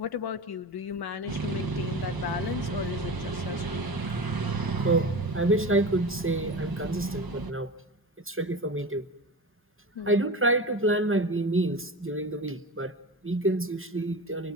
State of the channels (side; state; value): both; normal; correlation 0.28